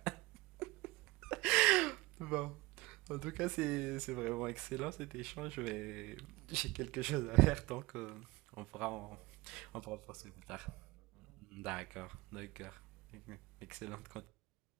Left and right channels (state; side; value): quieter; left; 21.5 dB